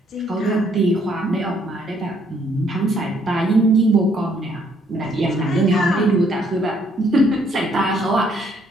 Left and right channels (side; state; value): both; normal; correlation 0.67